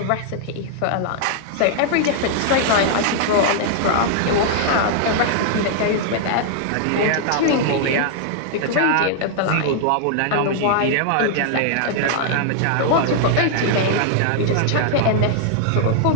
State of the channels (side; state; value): both; different; correlation -0.01